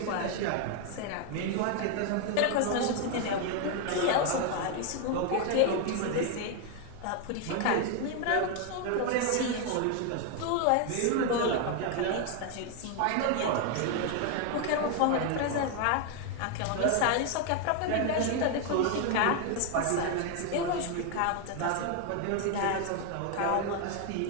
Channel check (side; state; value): both; different; correlation 0.01